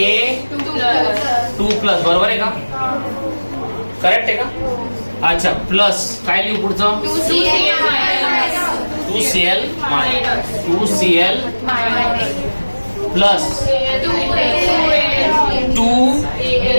बरोबर आहे का. करेक्ट आहे का. अच्छा प्लस काय लिहू पुढचं. 2Cl प्लस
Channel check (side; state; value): both; inverted; correlation -1.00